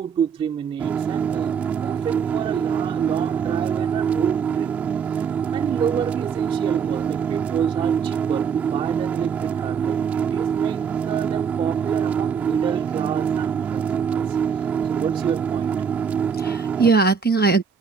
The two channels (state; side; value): quieter; left; 6.7 dB